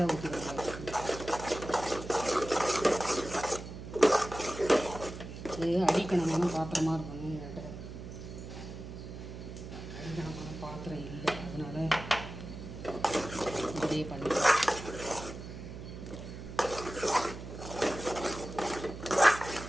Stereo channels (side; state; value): right; noise; hum, 11 dB below the sound